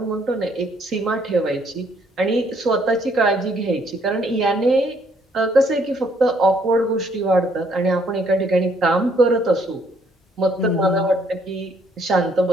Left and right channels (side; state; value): both; normal; correlation 0.67